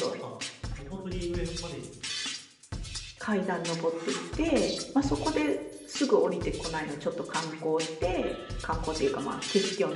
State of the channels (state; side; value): identical; both; correlation 1.00